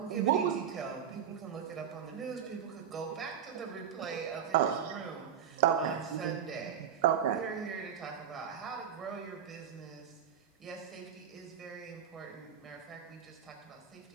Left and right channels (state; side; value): quieter; left; 8.6 dB